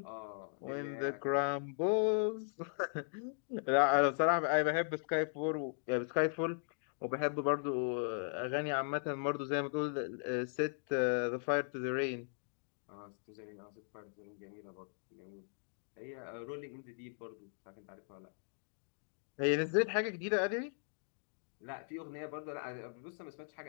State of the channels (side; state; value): right; silent; digital silence